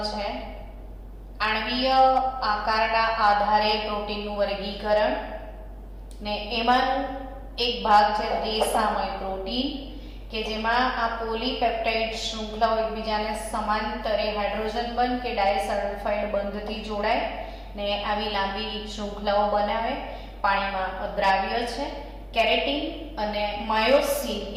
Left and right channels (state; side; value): identical; both; correlation 1.00